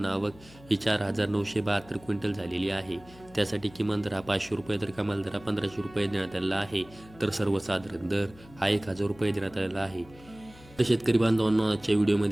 आवक ही 4,972 क्विंटल झालेली आहे. त्यासाठी किमान दर हा 500 रुपये तर कमाल दर हा 1,500 रुपये देण्यात आलेला आहे. तर सर्वसाधारण दर हा 1,000 रुपये देण्यात आलेला आहे. तर शेतकरी बांधवांनो, आजच्या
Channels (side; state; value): left; noise; hum, 22 dB below the sound